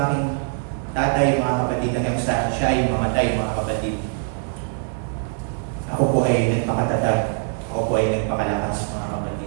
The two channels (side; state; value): left; silent; 64 dB below the other